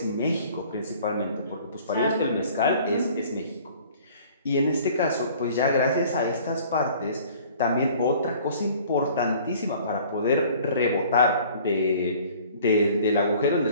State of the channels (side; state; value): both; inverted; correlation -0.51